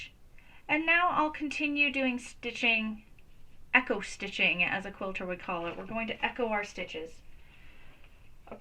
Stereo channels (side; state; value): both; identical; correlation 1.00